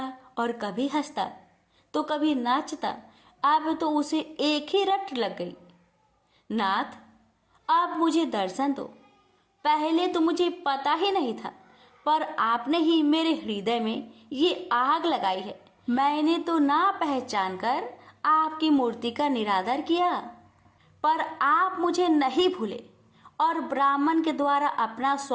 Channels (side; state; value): both; identical; correlation 1.00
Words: और कभी हंसता तो कभी नाचता। अब तो उसे एक ही रट लग गई, नाथ अब मुझे दर्शन दो। पहले तो मुझे पता ही नहीं था, पर आपने ही मेरे हृदय में ये आग लगाई है। मैंने तो ना पहचान कर आपकी मूर्ति का निरादर किया, पर आप मुझे नहीं भूले और ब्राह्मण के द्वारा अपना